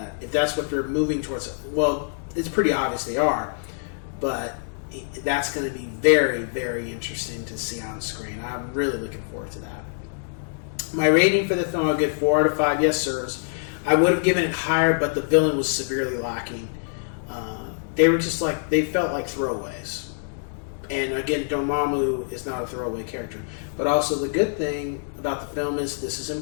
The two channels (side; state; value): right; silent; digital silence